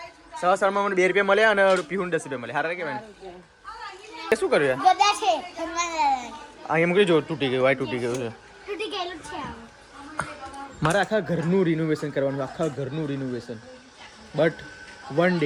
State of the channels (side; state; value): both; identical; correlation 1.00